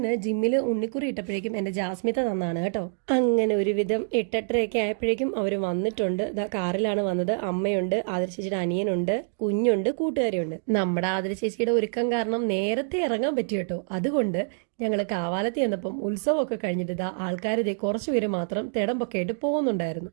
ജിമ്മിൽ ഉണ്ണിക്കുറി ഇട്ടപ്പോഴേക്കും എൻ്റെ ജാസ്മിത തന്നാണ് കേട്ടോ. അങ്ങനെ ഒരുവിധം 8-8:30 ആയപ്പോഴേക്കും അവർ വന്നിട്ടുണ്ട്. കാറിലാണ് വന്നത്. അമ്മയുണ്ട്, ആതിര ചേച്ചിയുടെ അനിയനുണ്ട്, കുഞ്ഞുണ്ട്, കൂട്ടുകാരിയുണ്ട്. നമ്മുടെ ആതിര ചേച്ചിയുടെ ഒരുക്കം കാരണം നേരത്തെ ഇറങ്ങാൻ പറ്റി കേട്ടോ. അതുകൊണ്ട് ഞങ്ങൾ കാവാലത്ത് ചെന്നപ്പം ഉത്സവമൊക്കെ കഴിഞ്ഞിട്ട് ആൾക്കാർ കുറച്ചുപേര് മാത്രം തിടമ്പൊക്കെ ആയിട്ട് പോകുന്നുണ്ടായിരുന്നു.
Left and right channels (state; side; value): silent; left; digital silence